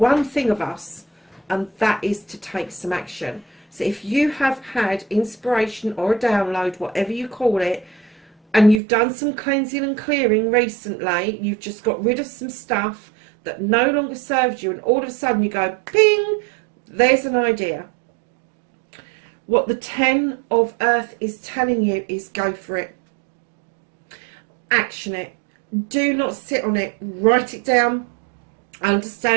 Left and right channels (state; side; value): drops out; left; at 8.8 s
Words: thing of us, and that is to take some action. So if you have had inspiration or a download, whatever you call it, and you've done some cleansing and clearing recently, you've just got rid of some stuff that no longer serves you, and all of a sudden you go, ping, there's an idea. What the 10 of Earth is telling you is go for it. Action it. Do not sit on it. Write it down.